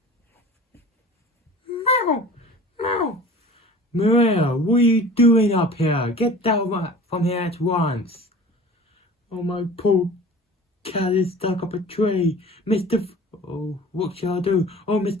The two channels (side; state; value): both; normal; correlation 0.42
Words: meow, meow. Maria, what are you doing up here? Get down from here at once. Oh, my poor cat is stuck up a tree. Oh, what shall I do? Oh,